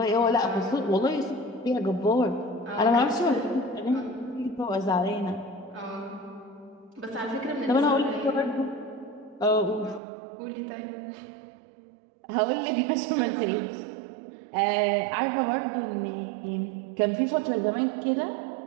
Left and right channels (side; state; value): left; drops out; at 10.0 s